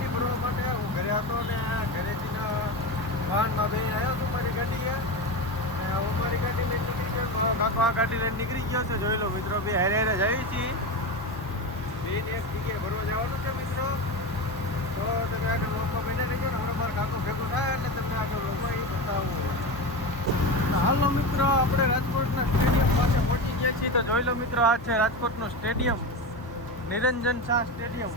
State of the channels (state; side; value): normal; both; correlation 0.21